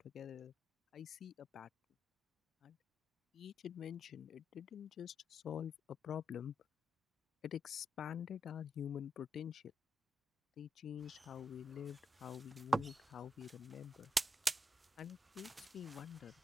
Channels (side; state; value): both; normal; correlation 0.84